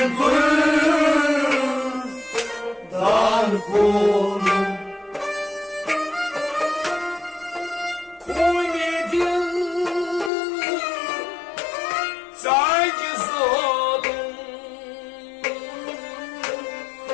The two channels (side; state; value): right; drops out; at 10.3 s